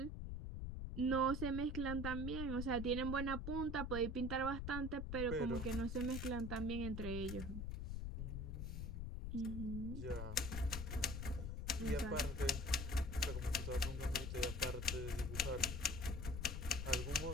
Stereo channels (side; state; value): left; noise; rumble, 4 dB below the sound